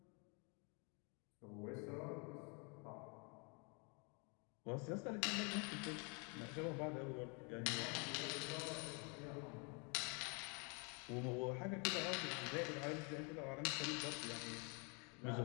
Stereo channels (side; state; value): right; quieter; 34.0 dB